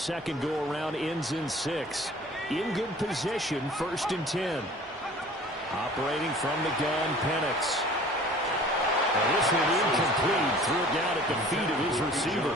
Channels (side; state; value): both; normal; correlation 0.47